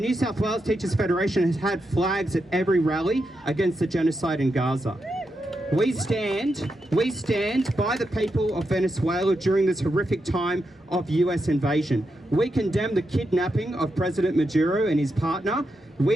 South Wales Teachers Federation has had flags at every rally against the genocide in Gaza. We stand by the people of Venezuela during this horrific time of US invasion. We condemn the kidnapping of President Maduro and his partner.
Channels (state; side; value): normal; both; correlation 0.85